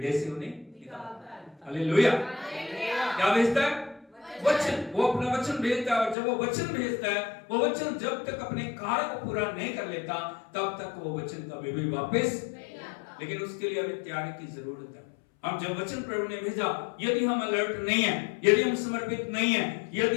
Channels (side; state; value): right; drops out; at 6.2 s